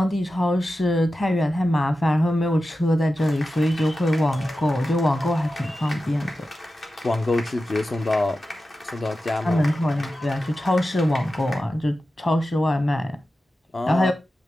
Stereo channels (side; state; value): both; normal; correlation 0.92